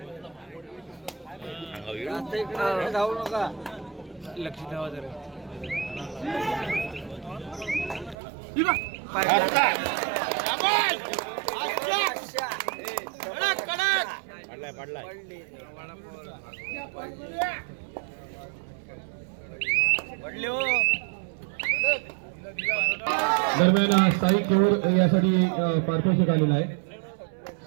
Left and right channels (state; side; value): drops out; left; at 8.2 s